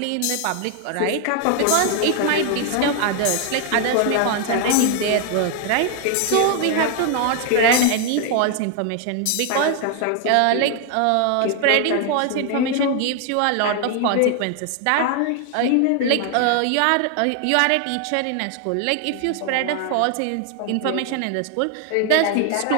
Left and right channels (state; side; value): different; both; correlation 0.00